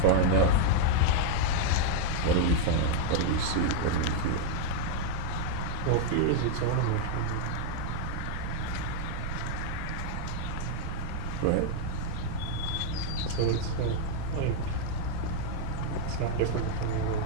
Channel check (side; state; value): both; different; correlation -0.01